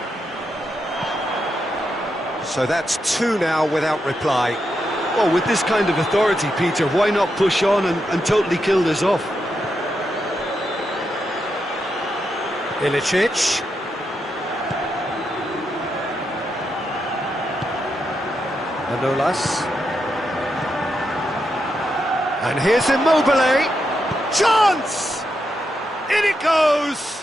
So that's two now without reply. Well, with this kind of authority, Peter, why not push on and totally kill this off? Ilicic. Manolas. And here's Immobile. Chance! In it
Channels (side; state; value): both; normal; correlation 0.84